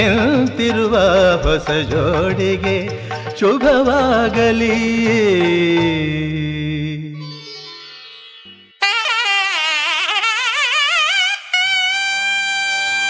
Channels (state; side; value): identical; both; correlation 1.00